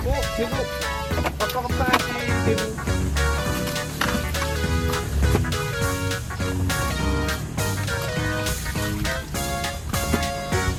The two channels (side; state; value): both; identical; correlation 1.00